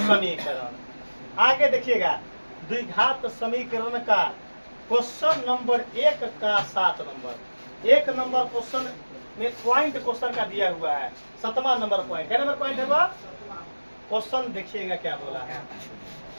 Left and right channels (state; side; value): inverted; both; correlation -1.00